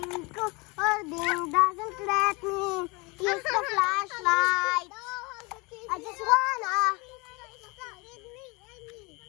doesn't let me use the flashlight. I just wanna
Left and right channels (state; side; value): quieter; right; 27.2 dB